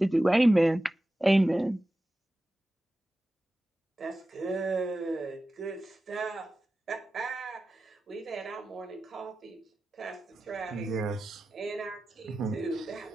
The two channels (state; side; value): normal; both; correlation 0.94